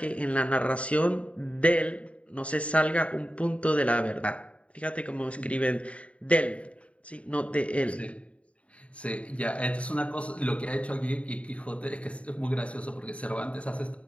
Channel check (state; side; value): late; right; 0.063 ms